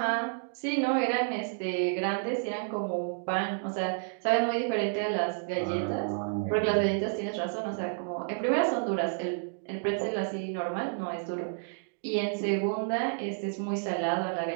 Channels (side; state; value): left; silent; digital silence